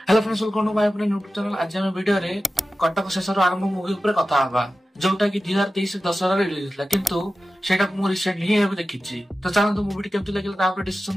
friends, welcome to my अपने YouTube channel. आज हम वीडियो रे कटक शेषर आरंभ मूवी ऊपर कथा हबा, जोटा कि 2023 दशहरा रिलीज होता किंतु सेटा मु रिसेंटली ही एबे देखिछि। तो चलନ୍ତୁ मूवी केमति लागिला ता ऊपर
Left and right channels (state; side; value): normal; both; correlation 0.94